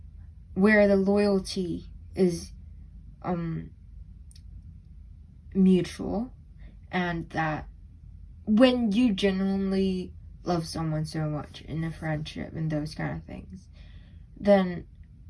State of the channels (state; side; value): identical; both; correlation 1.00